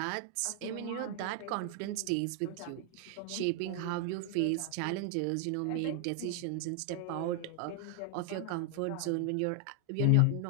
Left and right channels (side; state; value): both; different; correlation 0.00